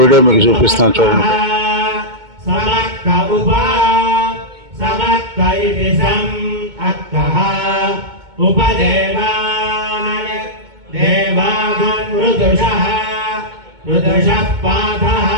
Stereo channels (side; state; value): left; late; 2.2 ms